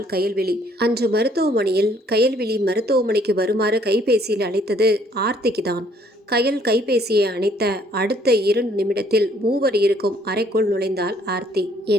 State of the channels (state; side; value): normal; both; correlation 0.63